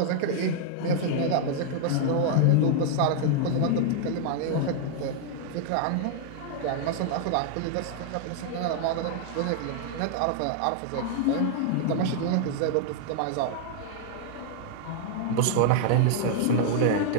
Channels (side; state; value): both; different; correlation -0.01